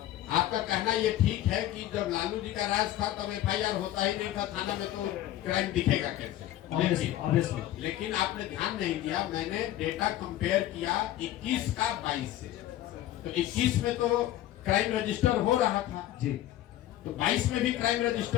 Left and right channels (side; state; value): right; quieter; 13.5 dB